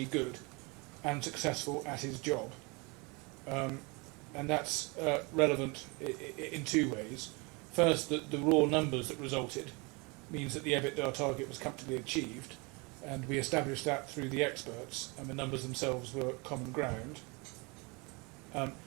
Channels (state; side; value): quieter; left; 28.7 dB